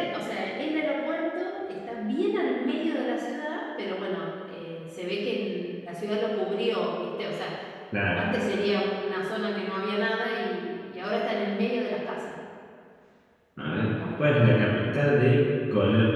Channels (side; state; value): both; identical; correlation 1.00